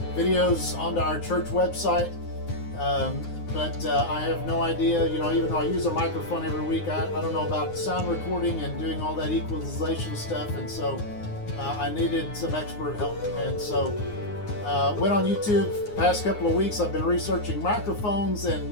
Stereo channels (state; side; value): late; right; 9.6 ms